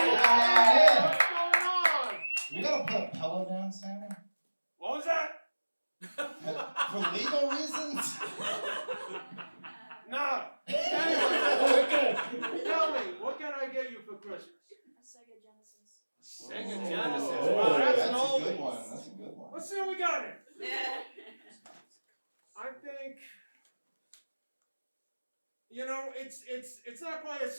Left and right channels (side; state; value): both; inverted; correlation -1.00